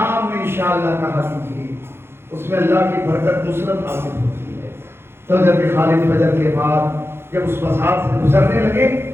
میں انشاءاللہ کہا کیجیے، اس میں اللہ کی برکت نصرت حاصل ہوتی ہے۔ تو جب خالد فجر کے بعد جب اس مسار سے گزرنے لگے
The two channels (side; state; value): left; late; 0.12 ms